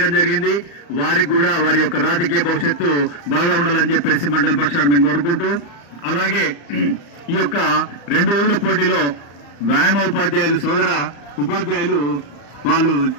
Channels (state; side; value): late; right; 35 ms